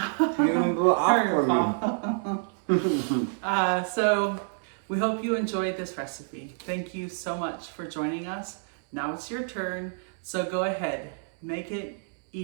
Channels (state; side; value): silent; left; 59 dB below the other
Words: So we hope you enjoyed this recipe. Thank you so much for joining us. Now it's your turn. So go ahead, make it,